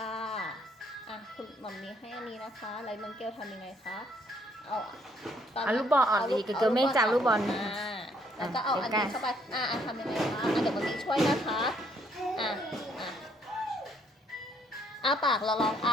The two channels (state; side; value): normal; both; correlation 0.68